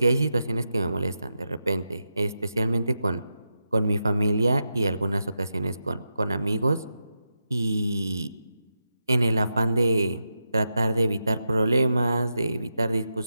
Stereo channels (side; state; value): both; inverted; correlation -0.88